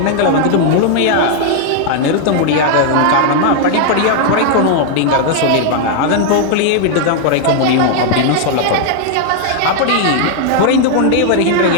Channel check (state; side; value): different; both; correlation 0.00